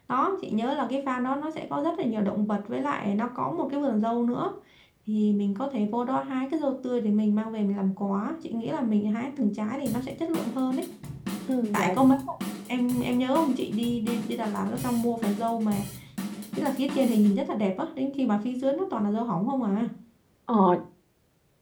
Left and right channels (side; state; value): both; identical; correlation 1.00